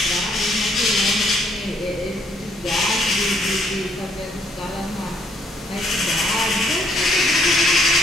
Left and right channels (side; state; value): both; normal; correlation 0.67